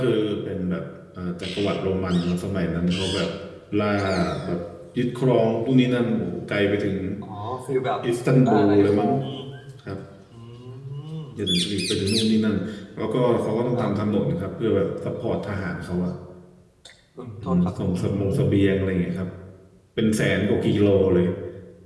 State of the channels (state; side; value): identical; both; correlation 1.00